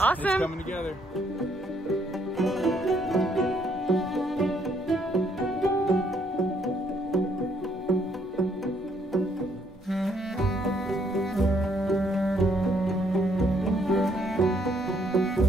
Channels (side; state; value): both; normal; correlation 0.69